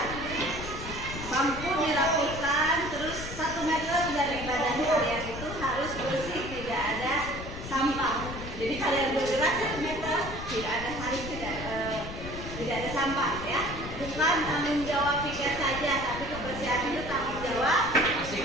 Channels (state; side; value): noise; left; rumble, 9 dB below the sound